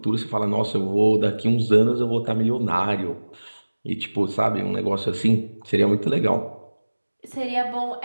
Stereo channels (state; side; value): inverted; both; correlation -1.00